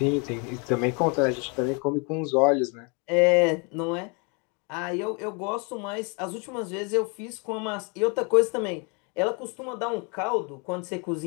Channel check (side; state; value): right; quieter; 33.5 dB